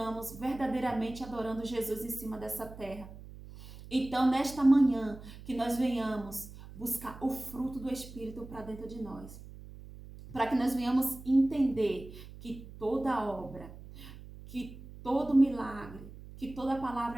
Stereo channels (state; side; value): noise; right; hum, 15 dB below the sound